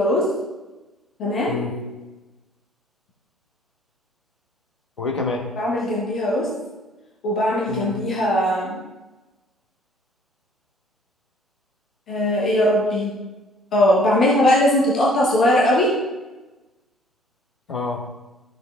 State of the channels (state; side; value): normal; both; correlation 0.57